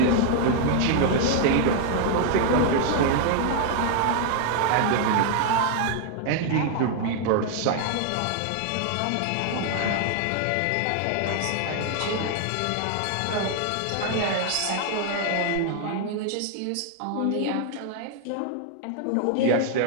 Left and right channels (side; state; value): both; different; correlation 0.00